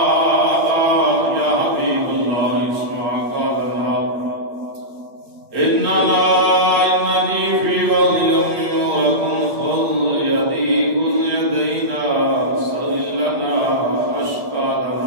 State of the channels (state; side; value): late; left; 8.5 ms